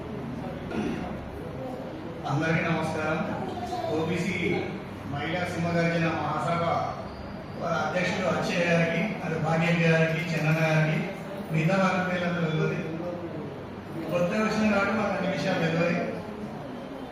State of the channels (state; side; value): identical; both; correlation 1.00